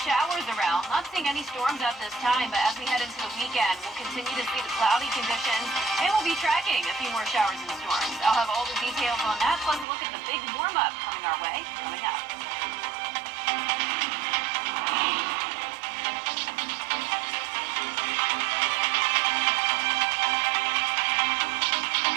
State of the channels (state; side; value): drops out; left; at 9.9 s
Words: showers around. Not seeing any storms at this time, but as we head into the weekend, we'll continue to see the cloudy conditions, and we'll be tracking a few more showers and storms. I'll have all the details on that, plus a look at the big warm-up coming our way, coming up.